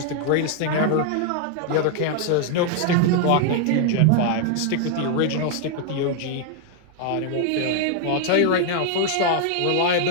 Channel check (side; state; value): both; different; correlation 0.00